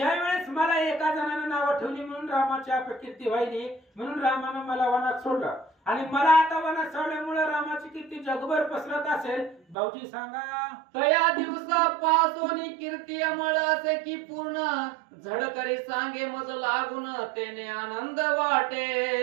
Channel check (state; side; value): drops out; left; at 9.8 s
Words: वेळेस मला एका जणाने नाव ठेवली म्हणून रामाची अपकीर्ती व्हायली, म्हणून रामानं मला वनात सोडलं आणि मला आता वनात सोडल्यामुळे रामाची कीर्ती जगभर पसरत असेल. भाऊजी सांगा. तया दिवसापासोनी कीर्ती अमळ असे की पूर्ण झडकरी सांगे मज लागून तेने आनंद